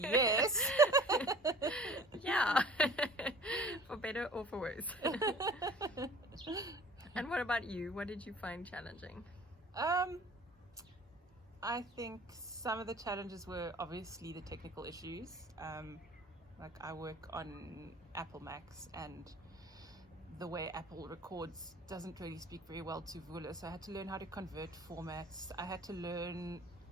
Yeah. For better or for worse. And what about you? What did you find challenging? I think some of the challenges were obviously the technical issues. Like I work on Apple Macs, and the way Apple records doesn't really speak very well to Vula, so I had to learn how to convert formats. I had to learn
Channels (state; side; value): normal; both; correlation 0.46